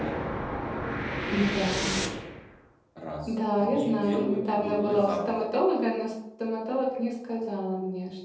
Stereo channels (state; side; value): identical; both; correlation 1.00